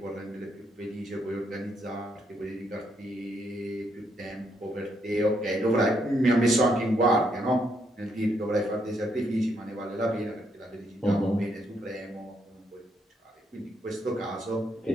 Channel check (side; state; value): both; normal; correlation 0.75